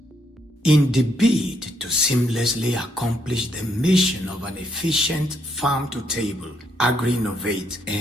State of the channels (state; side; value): normal; both; correlation 0.74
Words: In the bid to seamlessly accomplish the mission of an efficient farm-to-table, agri-innovate,